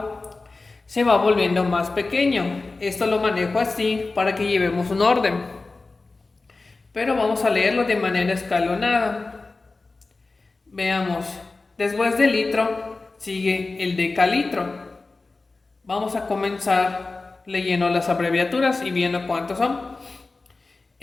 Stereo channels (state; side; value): quieter; right; 3.6 dB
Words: se va volviendo más pequeño. Esto lo manejo así para que llevemos un orden. Pero vamos a leerlo de manera escalonada. Veamos. Después del litro sigue el decalitro. Vamos a comenzar leyendo las abreviaturas y viendo cuántos son.